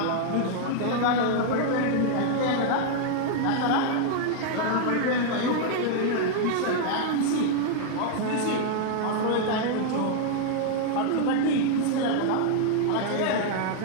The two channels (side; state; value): both; different; correlation 0.00